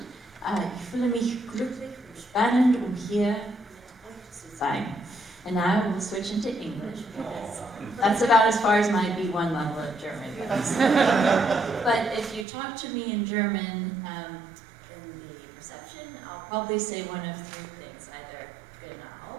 Ich fühle mich glücklich und spannend, hier mit euch zu sein. And now we'll switch into English because that's about as far as my B1 level of German goes. But if you talk to me in German in the reception, I'll probably say one of 3 things, either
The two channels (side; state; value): left; drops out; at 12.5 s